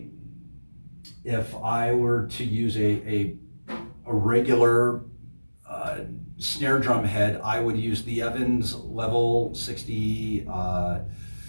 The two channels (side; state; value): both; inverted; correlation -1.00